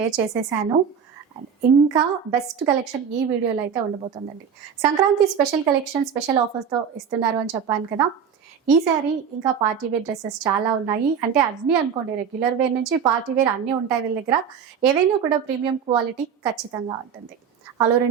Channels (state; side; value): quieter; left; 7.3 dB